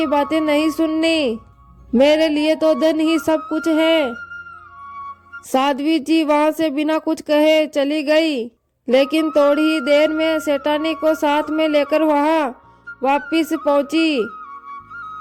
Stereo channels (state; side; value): identical; both; correlation 1.00